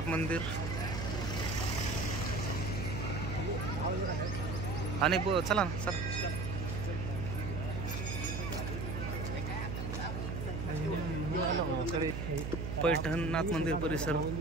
मंदिर. हा नाही चला ना चला. पैठणनाथ मंदिर परिसर,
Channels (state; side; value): noise; right; hum, 3 dB below the sound